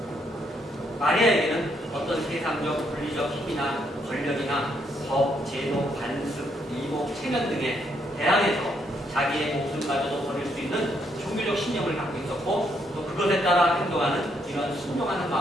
마리아에게는 어떤 세상적 물리적 힘이나 권력이나 법, 제도, 관습, 이복, 체면 등에 대항해서 자기의 목숨마저도 버릴 수 있는 종교적 신념을 갖고 있었고 또 그것에 따라 행동하는 이런 순종하는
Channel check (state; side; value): normal; both; correlation 0.74